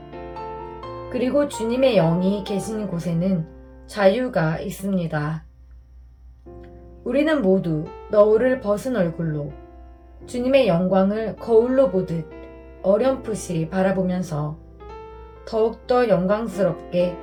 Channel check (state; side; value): identical; both; correlation 1.00